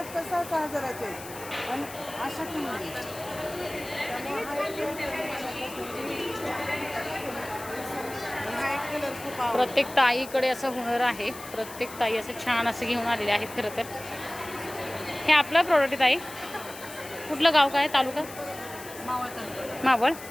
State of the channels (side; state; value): left; noise; hiss, 15 dB below the sound